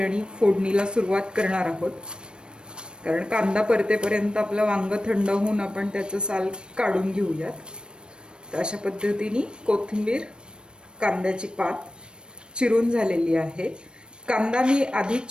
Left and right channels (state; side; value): late; left; 0.053 ms